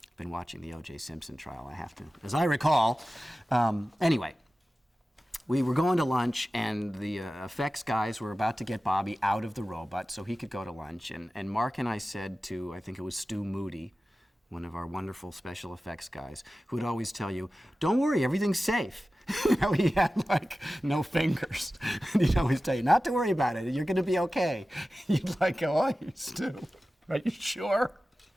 I've been watching the O.J. Simpson trial, I have to, as I recall. Anyway, we were going to lunch, and the effects guys were about to get Bobby out of the robot so he could go to lunch. And Mark and I said to, I think it was Stu Moody, one of our wonderful special effects guys, who would always tell you, don't worry, everything's safe. You know, he had like no fingers. And he'd always tell you, not to worry about it, you're gonna be okay. You'd like go, oh, you Stu, are you sure?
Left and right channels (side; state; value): both; normal; correlation 0.95